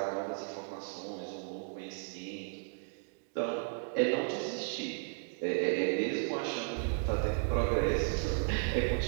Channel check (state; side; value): silent; left; digital silence